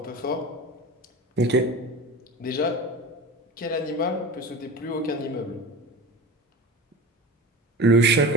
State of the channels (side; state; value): both; normal; correlation 0.31